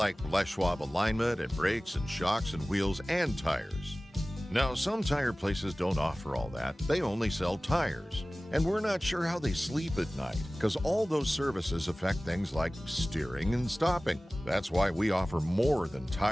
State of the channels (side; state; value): both; normal; correlation 0.97